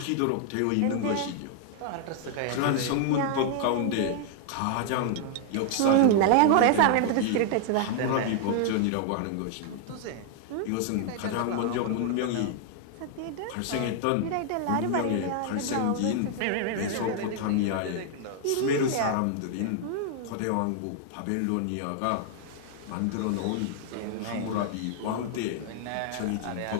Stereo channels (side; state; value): both; different; correlation 0.00